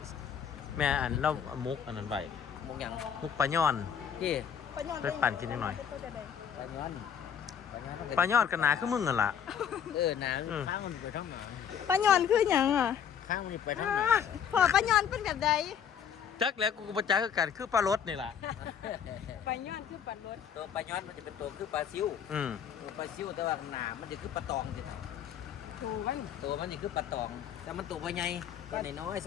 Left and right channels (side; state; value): right; quieter; 8.1 dB